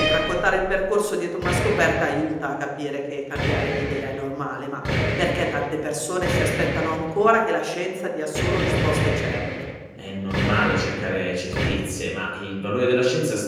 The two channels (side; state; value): both; identical; correlation 1.00